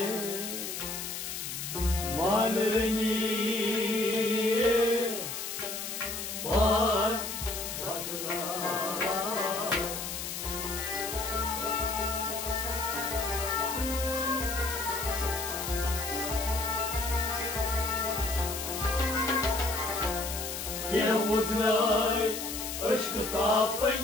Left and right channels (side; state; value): left; noise; hiss, 5 dB below the sound